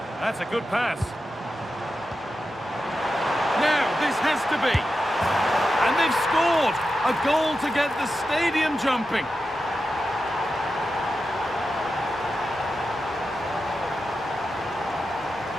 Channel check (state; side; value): normal; both; correlation 0.90